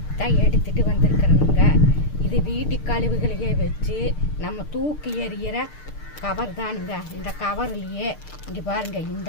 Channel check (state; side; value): late; right; 6.6 ms